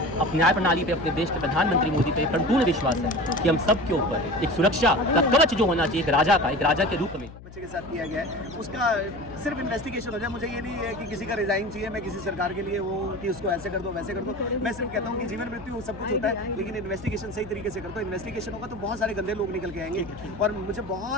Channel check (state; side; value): noise; left; hum, 17 dB below the sound